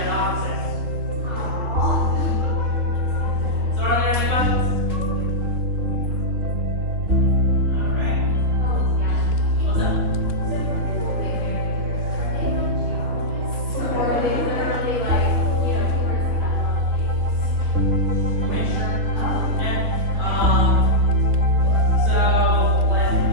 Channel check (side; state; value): left; late; 3.7 ms